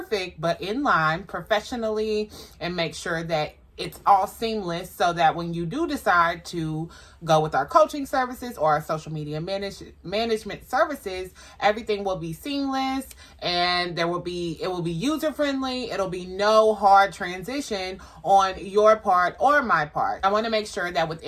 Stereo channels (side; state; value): both; identical; correlation 1.00